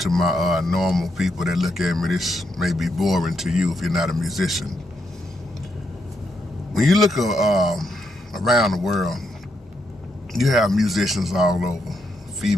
normal people that look at me, this may be boring to you if you're not a musician. When you look around the world, you have musicians all over,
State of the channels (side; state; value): both; normal; correlation 0.80